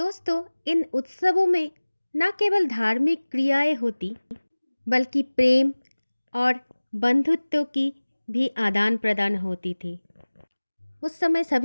इन उत्सवों में न केवल धार्मिक क्रियाएं होती, बल्कि प्रेम और बंधुत्व की भी आदान प्रदान होती थी। उस समय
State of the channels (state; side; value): inverted; both; correlation -1.00